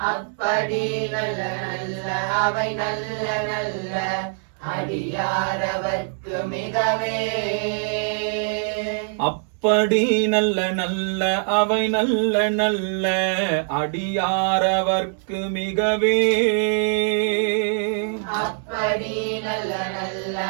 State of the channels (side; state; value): left; silent; 63 dB below the other